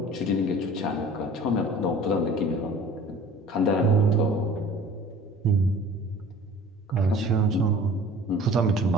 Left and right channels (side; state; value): both; normal; correlation 0.46